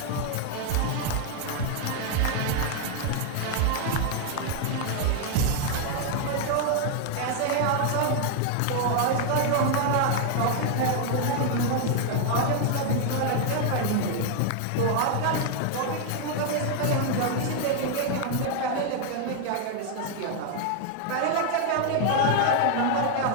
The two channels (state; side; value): different; both; correlation 0.00